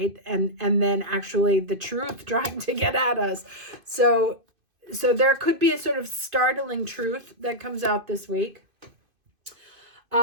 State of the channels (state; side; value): late; left; 2.5 ms